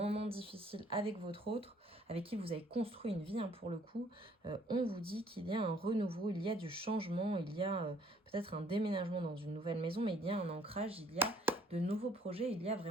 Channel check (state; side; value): normal; both; correlation 0.61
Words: difficiles avec votre autre, avec qui vous avez construit une vie pour le coup, on vous dit qu'il y a un renouveau, il y a du changement, il y a peut-être un déménagement dans une nouvelle maison, mais il y a un ancrage, il y a de nouveaux projets, il y a